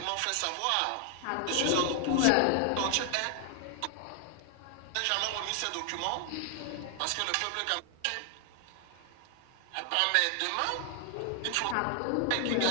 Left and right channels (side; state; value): both; different; correlation 0.00